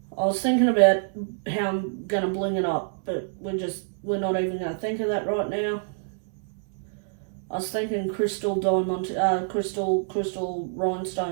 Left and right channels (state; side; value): silent; left; 61 dB below the other